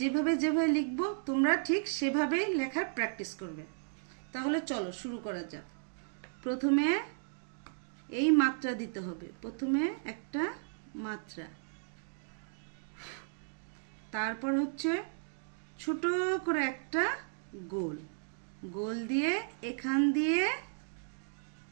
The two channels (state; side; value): silent; left; digital silence